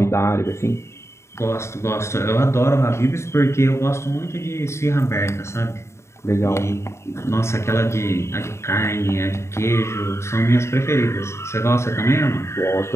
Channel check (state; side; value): late; right; 0.13 ms